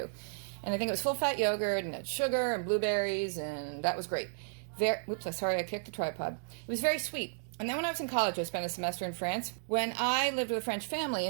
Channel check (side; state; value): left; silent; digital silence